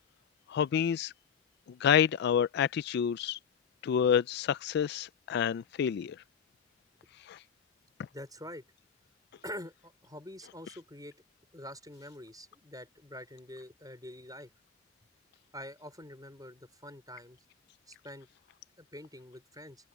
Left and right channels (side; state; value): right; quieter; 7.7 dB